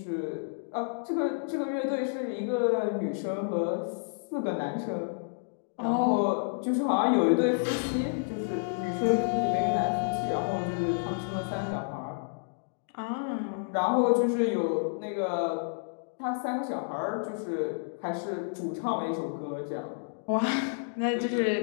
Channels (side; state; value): right; silent; digital silence